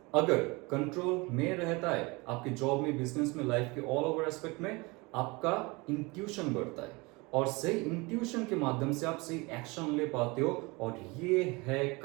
अगर कंट्रोल में रहता है, आपकी जॉब में, बिजनेस में, लाइफ के ऑल ओवर एस्पेक्ट में, आपका इंट्यूशन बढ़ता है और सही इंट्यूशन के माध्यम से आप सही एक्शन ले पाते हो। और ये है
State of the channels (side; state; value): left; quieter; 25.6 dB